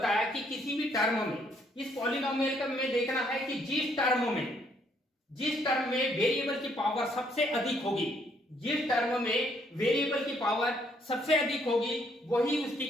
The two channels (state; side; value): normal; both; correlation 0.69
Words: कि किसी भी टर्म में, इस पॉलिनोमियल का में देखना है कि जिस टर्म में वेरिएबल की पावर सबसे अधिक होगी, जिस टर्म में वेरिएबल की पावर सबसे अधिक होगी, वही उसकी